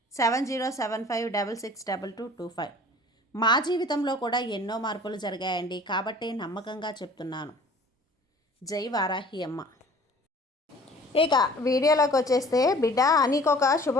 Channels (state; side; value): normal; both; correlation 0.48